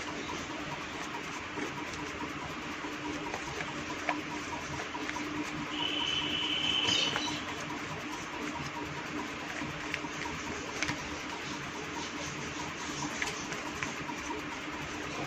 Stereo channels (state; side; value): identical; both; correlation 1.00